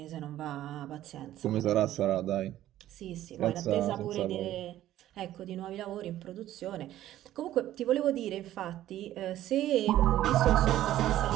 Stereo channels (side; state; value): left; quieter; 13.4 dB